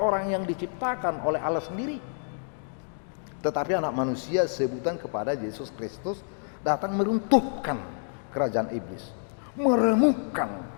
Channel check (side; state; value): right; silent; digital silence